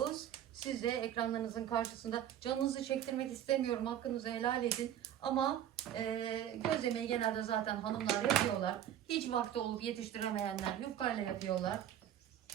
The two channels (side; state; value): left; quieter; 10.9 dB